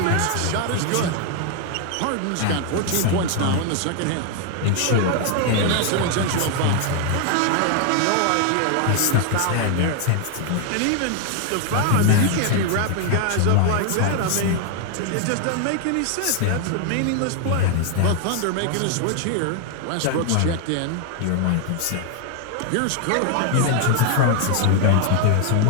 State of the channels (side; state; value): both; different; correlation 0.00